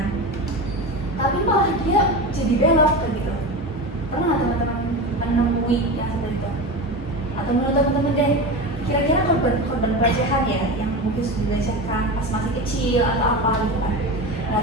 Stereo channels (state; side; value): normal; both; correlation 0.24